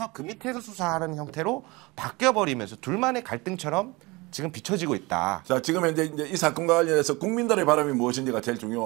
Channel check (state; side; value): quieter; left; 24.1 dB